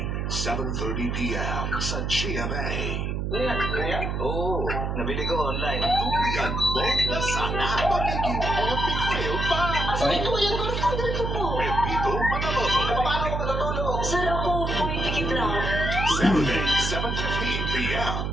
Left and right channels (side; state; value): right; noise; hum, 1 dB below the sound